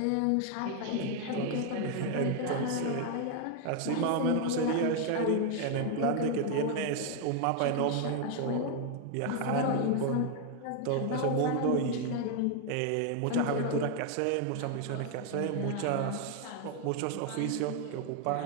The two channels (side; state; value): both; different; correlation 0.00